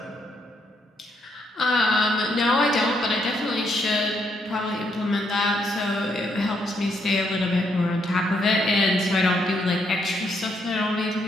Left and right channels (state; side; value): normal; both; correlation 0.75